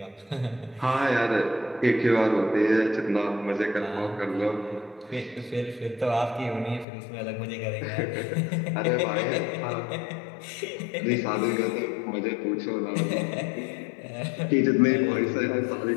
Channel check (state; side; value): drops out; right; at 6.9 s